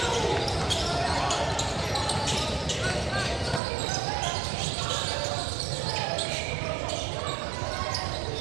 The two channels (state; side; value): drops out; left; at 3.6 s